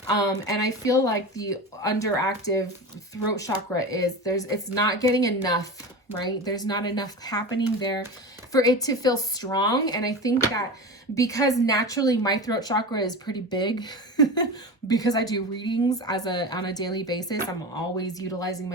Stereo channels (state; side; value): normal; both; correlation 0.27